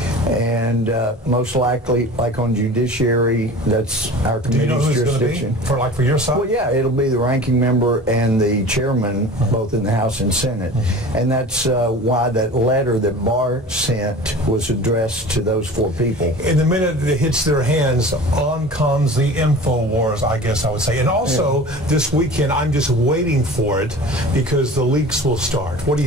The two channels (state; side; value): normal; both; correlation 0.38